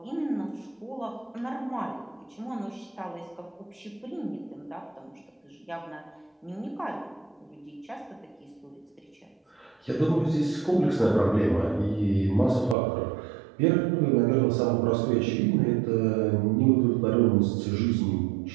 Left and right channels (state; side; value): drops out; left; at 12.8 s